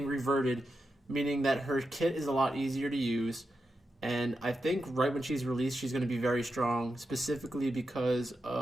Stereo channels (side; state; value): both; normal; correlation 0.88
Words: reverted, meaning that her kit is a lot easier to use. And I think right when she's released, she's going to be very strong, specifically because